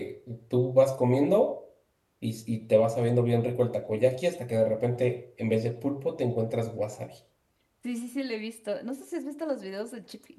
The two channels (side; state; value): both; identical; correlation 1.00